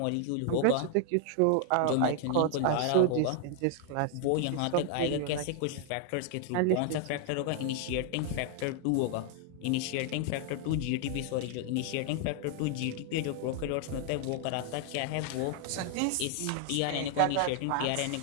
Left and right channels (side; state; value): both; different; correlation 0.00